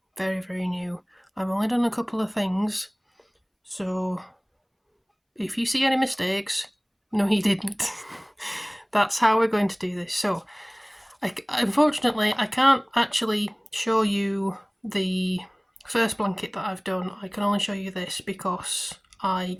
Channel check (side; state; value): both; identical; correlation 1.00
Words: very new. I've only done a couple of things, so if you see any mistakes, no you didn't. That's how we're going to do this. So unfortunately, I can't actually show you the first blanket that I've done. I can only show you this because I